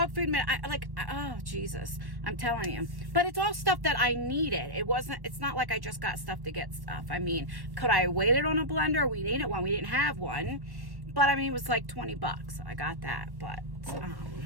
food. Oh, Jesus. I'm telling you. But it's all stuff that I needed. It's not like I just got stuff to get stuff. I mean, could I have waited on a blender? We needed one. We didn't have one. But, I mean, it was like $20. So I got that. But,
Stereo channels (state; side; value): late; left; 1.1 ms